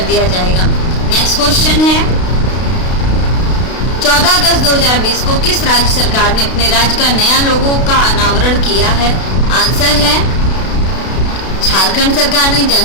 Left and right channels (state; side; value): late; right; 32 ms